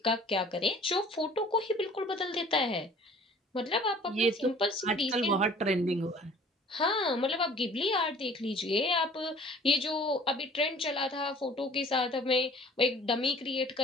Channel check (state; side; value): normal; both; correlation 0.50